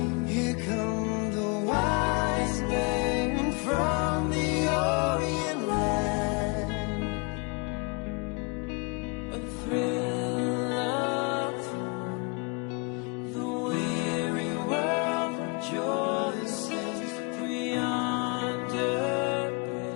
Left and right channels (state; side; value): quieter; right; 32.3 dB